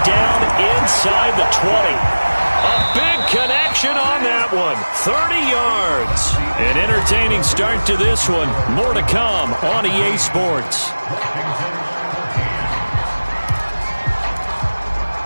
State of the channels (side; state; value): both; inverted; correlation -1.00